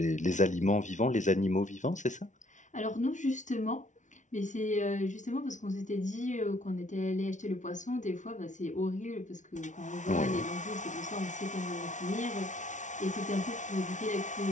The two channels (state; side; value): late; right; 0.36 ms